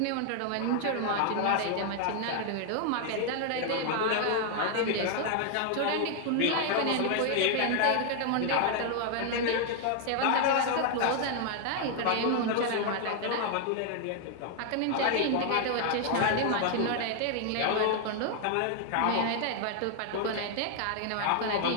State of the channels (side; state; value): both; different; correlation 0.00